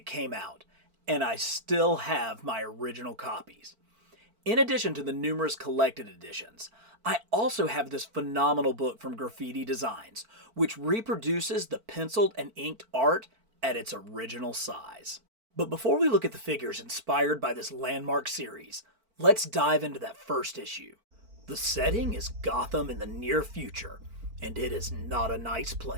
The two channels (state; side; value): late; left; 4.5 ms